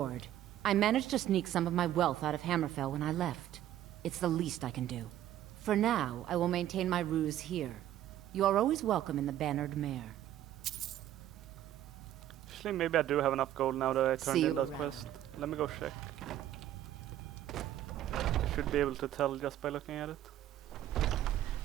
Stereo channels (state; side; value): quieter; left; 12.3 dB